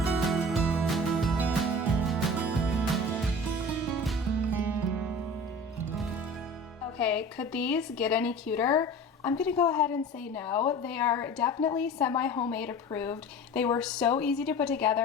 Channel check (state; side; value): normal; both; correlation 0.38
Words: Okay, could these get any cuter? I'm gonna go ahead and say no. They are definitely semi-homemade approved. They were so easy to put